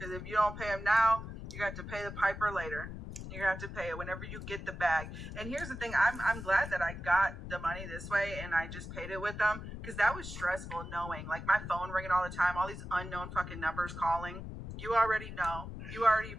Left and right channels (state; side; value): noise; left; rumble, 9 dB below the sound